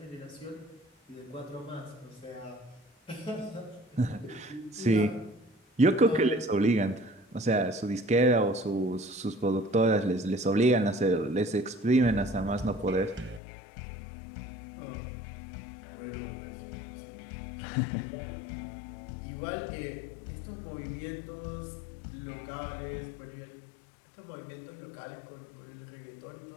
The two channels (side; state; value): right; drops out; at 13.4 s